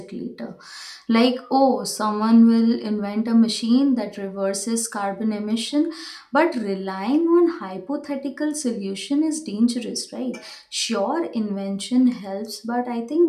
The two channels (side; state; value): both; identical; correlation 1.00